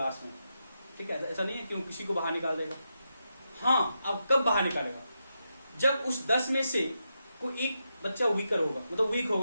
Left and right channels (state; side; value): inverted; both; correlation -0.85